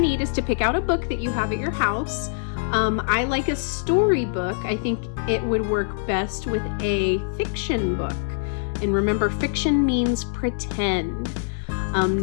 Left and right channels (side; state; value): right; silent; 63 dB below the other